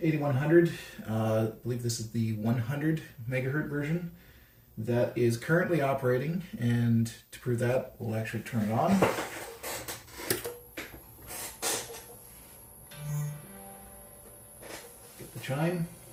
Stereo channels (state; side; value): identical; both; correlation 1.00